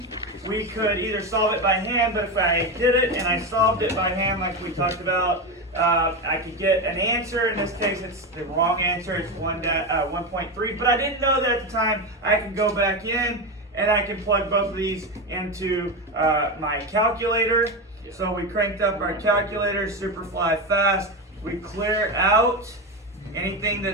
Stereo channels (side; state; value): both; normal; correlation 0.16